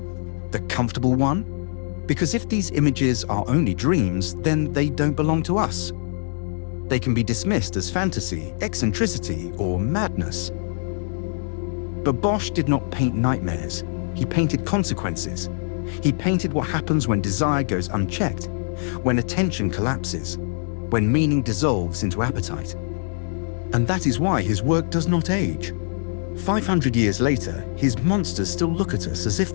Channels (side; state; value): right; silent; 63 dB below the other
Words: The comfortable one? Because if these images are only dreams, then they don't belong to us. They can be dismissed as fantasy, eccentricity, or madness. But Bosch did not paint nightmares. He painted consequences. He painted what happens when desire goes unchecked, when attention collapses, when meaning dissolves into appetite. And that is why his work does not age. 500 years later, his monsters still look at us as if